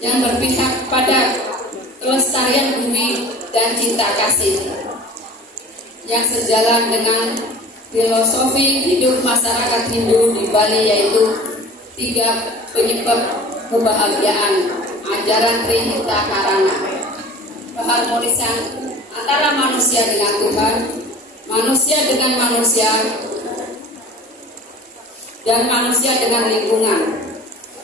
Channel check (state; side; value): normal; both; correlation 0.41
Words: berpihak pada kelestarian bumi dan cinta kasih yang sejalan dengan filosofi hidup masyarakat Hindu di Bali, yaitu 3 penyebab kebahagiaan ajaran Trihita Karana, keharmonisan antara manusia dengan Tuhan, manusia dengan manusia, dan manusia dengan lingkungan.